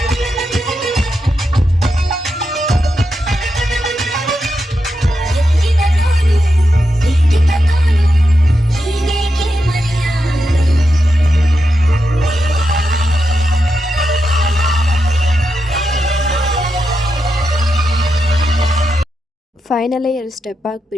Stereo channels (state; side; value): normal; both; correlation 0.86